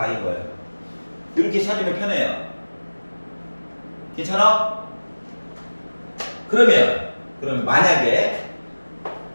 거예요. 이렇게 찾으면 편해요. 괜찮아? 그러면 만약에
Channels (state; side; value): inverted; both; correlation -1.00